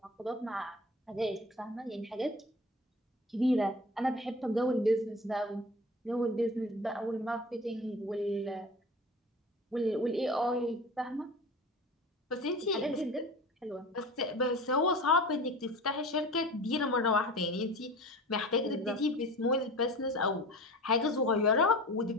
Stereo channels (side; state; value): both; normal; correlation 0.36